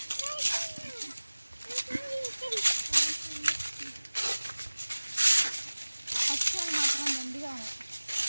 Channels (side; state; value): both; inverted; correlation -1.00